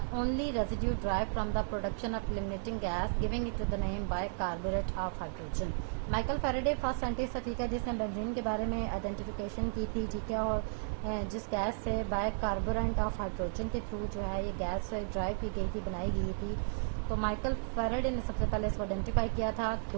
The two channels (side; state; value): left; silent; 55 dB below the other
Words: only residue derived from the production of eliminating gas, giving it to the name bicarbonate of hydrogen. Michael Faraday first scientist था, ठीक है, जिसने benzene के बारे में identification की थी, ठीक है, और जिस गैस से बाइकार्बोनेट ऑफ हाइड्रोजन के थ्रू जो है ये गैस ड्राइव की गई थी, बनाई गई थी, तो माइकल फैराडे ने सबसे पहले इसको आइडेंटिफाई किया था.